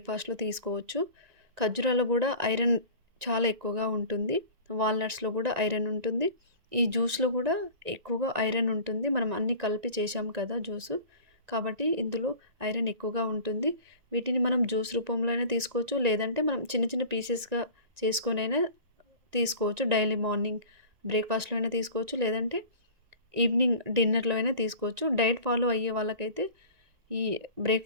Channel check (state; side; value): late; left; 1.9 ms